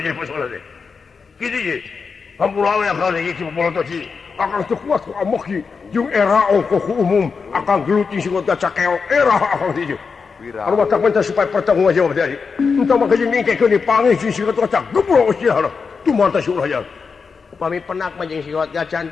masalah teh kitu ye hampura we ka ieu ci polotoci akan teu kuat ku amoki jeung era ongko ku umum akan geluting sing caca keok era akan ieu anu matak minta supaya pertanggung jawab jadi entah maka jeung ningkekeun dipanggih si sigot gaca geblok usiana tumanta si ulah jan upami penak mah jeung sigot gaca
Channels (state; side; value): quieter; right; 5.3 dB